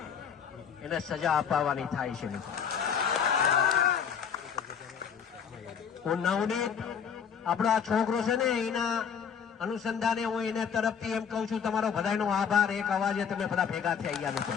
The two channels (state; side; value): quieter; right; 7.3 dB